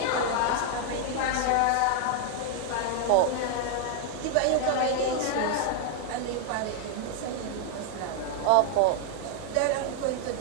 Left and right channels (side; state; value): both; different; correlation 0.00